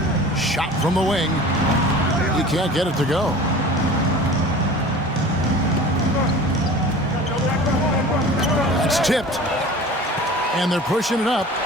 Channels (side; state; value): both; normal; correlation 0.40